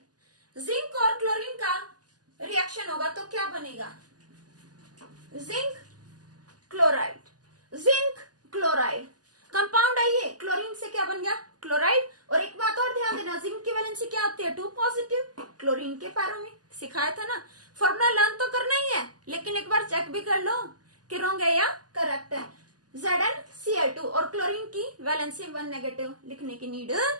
जिंक और क्लोरीन का रिएक्शन होगा तो क्या बनेगा? जिंक क्लोराइड कंपाउंड है ये। क्लोरीन से क्या बन गया? क्लोराइड। और एक बात और ध्यान देना, जिंक की वैलेंसी क्या होती है? 2 पॉजिटिव। क्लोरीन के पैरों में सिखाया था ना। फॉर्मूला लर्न तो करना ही है, लेकिन एक बार चेक भी कर लो कि रॉन्ग है या करेक्ट है। ZnCl2 और क्लोरीन की वैलेंसी 1 नेगेटिव, लिखने की नीड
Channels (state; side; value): late; left; 0.68 ms